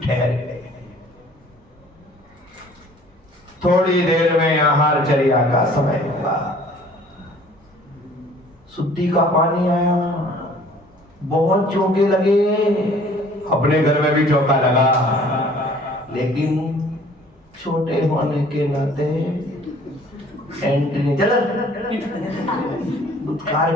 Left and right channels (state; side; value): normal; both; correlation 0.53